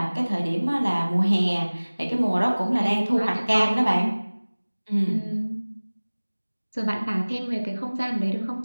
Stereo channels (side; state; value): both; inverted; correlation -1.00